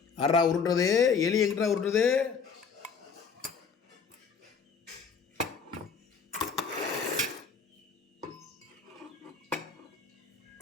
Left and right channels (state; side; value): quieter; right; 5.8 dB